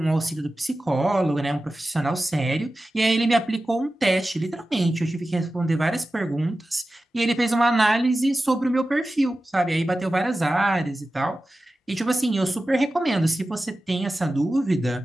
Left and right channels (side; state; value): both; normal; correlation 0.94